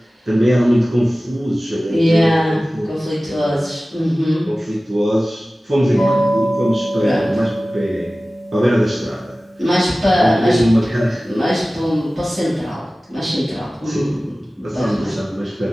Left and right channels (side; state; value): both; normal; correlation 0.97